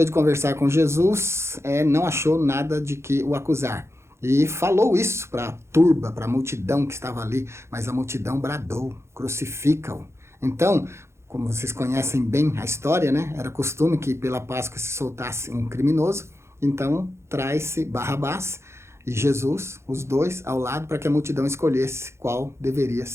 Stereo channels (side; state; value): left; late; 0.13 ms